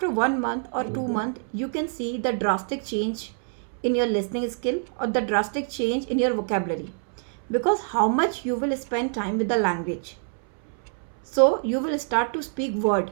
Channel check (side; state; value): left; silent; 61 dB below the other